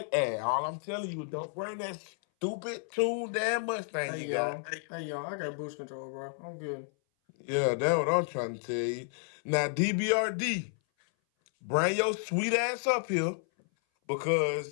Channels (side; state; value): right; silent; 57 dB below the other